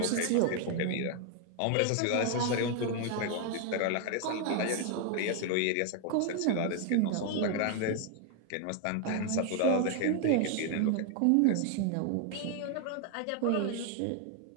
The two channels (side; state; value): both; different; correlation 0.00